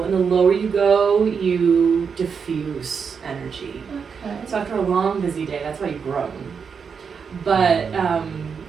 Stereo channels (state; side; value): quieter; left; 6.2 dB